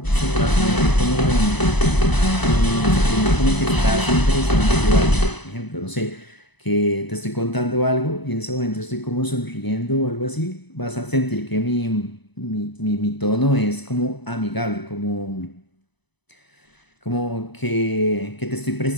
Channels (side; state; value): right; late; 1.0 ms